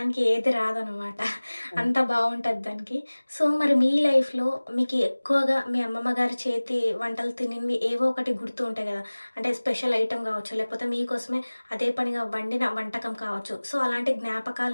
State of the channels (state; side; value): inverted; both; correlation -1.00